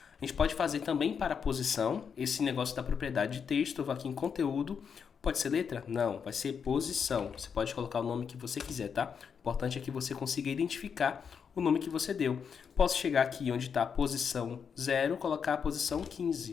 A gente pode fazer também para a posição, esse negócio da propriedade de texto. Eu vou aqui em conteúdo, pode ser letra? Não, vai ser posição. Você pode colocar o nome que você quiser, tá? O importante é que você consiga identificar o nome que você deu. Posso chegar aqui onde está a posição 0, colocar a posição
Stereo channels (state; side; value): quieter; right; 6.7 dB